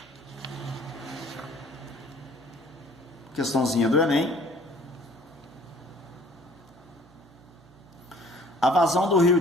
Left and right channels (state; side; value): noise; right; hum, 27 dB below the sound